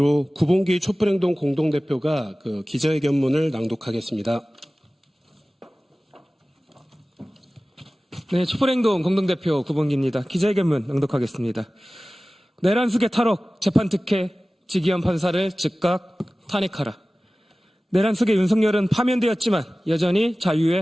구봉기 촛불행동 공동대표가 그 기자회견문을 낭독하겠습니다. 네, 촛불행동 공동대표 구봉기입니다. 기자회견문 낭독하겠습니다. 내란 수괴 탈옥 재판 특혜 지기현 판사를 즉각 탄핵하라. 내란 수괴 윤석열은 파면되었지만 여전히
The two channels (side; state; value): both; normal; correlation 0.97